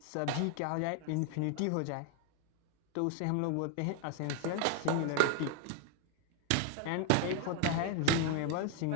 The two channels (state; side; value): different; both; correlation 0.00